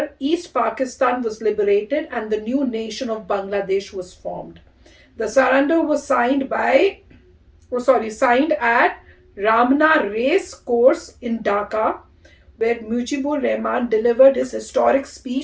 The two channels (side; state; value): both; identical; correlation 1.00